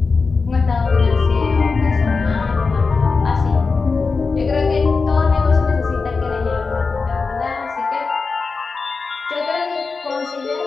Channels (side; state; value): right; quieter; 4.5 dB